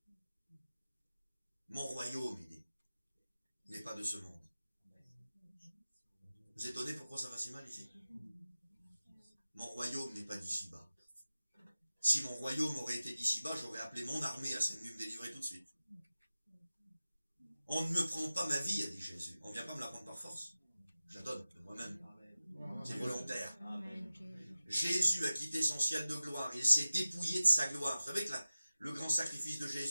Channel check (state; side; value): inverted; both; correlation -0.95